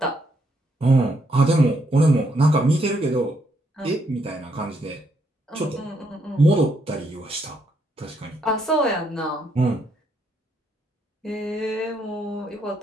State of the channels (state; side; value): normal; both; correlation 0.75